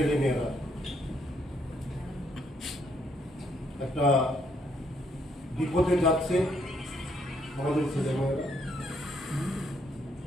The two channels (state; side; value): normal; both; correlation 0.72